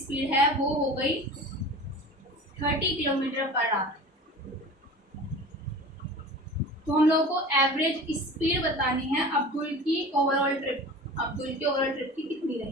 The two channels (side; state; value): both; normal; correlation 0.37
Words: है वो हो गई 30 किलोमीटर पर आवर। तो हम लोगों को एवरेज स्पीड बतानी है अब्दुल की ओवरऑल ट्रिप, अब्दुल की ओवरऑल ट्रिप की कितनी